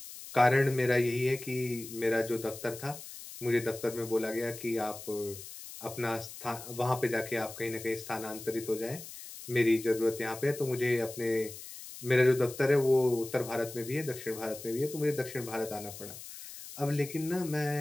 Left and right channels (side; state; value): left; noise; hiss, 13 dB below the sound